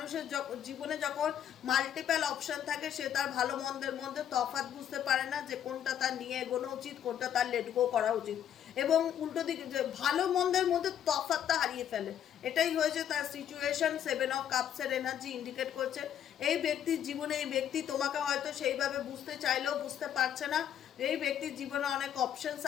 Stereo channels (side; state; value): right; quieter; 9.9 dB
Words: জীবনে যখন মাল্টিপল অপশন থাকে সে তার ভালো মন্দের মধ্যে তফাৎ বুঝতে পারে না, যে কোনটা তার নিয়ে এগোনো উচিত, কোনটা তার লেট গো করা উচিত, এবং উল্টো দিকে যে ভালো মন্দের মধ্যে তফাৎটা হারিয়ে ফেলে। এটাই হয়েছে তার সিচুয়েশন। 7 অফ কাপসের এনার্জি ইন্ডিকেট করছে এই ব্যক্তির জীবনে এই ব্যক্তি তোমাকে হয়তো সেইভাবে বুঝতে চাইলেও বুঝতে পারছে না। এই ব্যক্তির জীবনে অনেক অপশনস